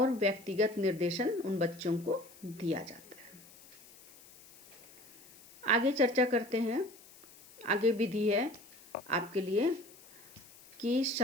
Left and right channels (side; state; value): left; noise; hiss, 22 dB below the sound